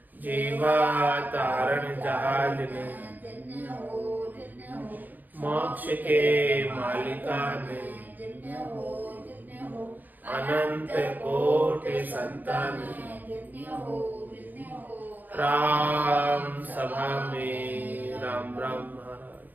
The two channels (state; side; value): late; left; 0.085 ms